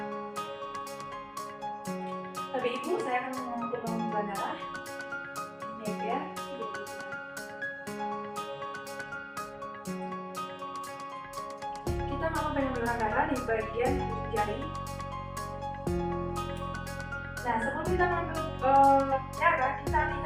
Tapi ibu, saya akan melakukan pengambilan darah. Ini ya. Kita melakukan pengambilan darah di bagian ujung jari. Nah, sebelum kita mengambil darah, kita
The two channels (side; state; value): both; identical; correlation 1.00